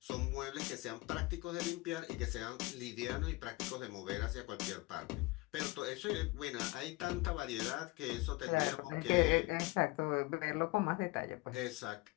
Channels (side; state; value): right; quieter; 22.6 dB